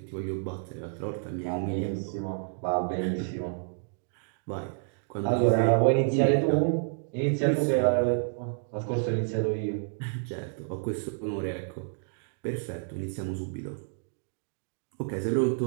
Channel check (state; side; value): silent; left; digital silence